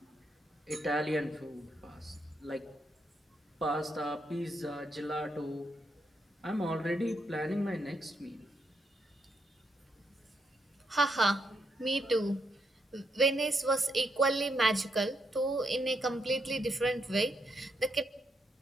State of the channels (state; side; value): normal; both; correlation 0.79